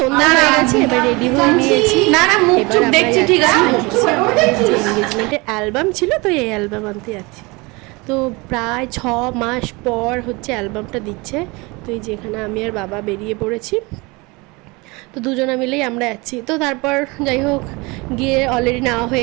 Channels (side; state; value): left; quieter; 25.5 dB